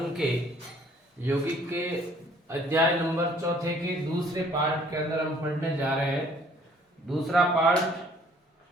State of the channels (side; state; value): both; normal; correlation 0.58